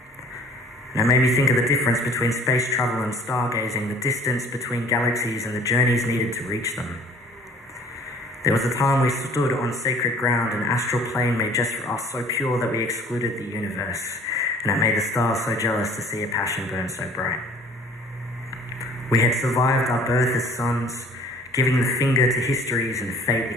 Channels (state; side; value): normal; both; correlation 0.52